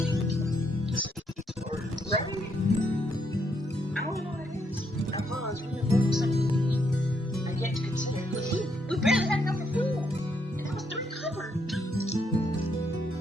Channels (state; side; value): normal; both; correlation 0.75